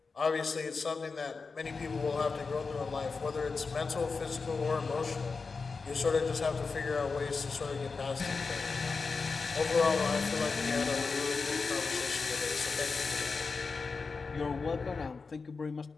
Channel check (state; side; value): quieter; right; 4.5 dB